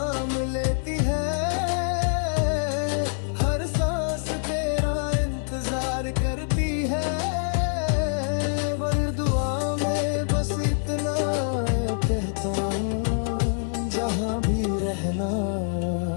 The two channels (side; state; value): right; silent; 60 dB below the other